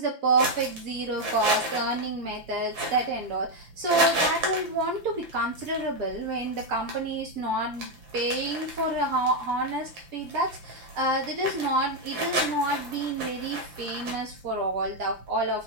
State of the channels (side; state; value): left; late; 5.8 ms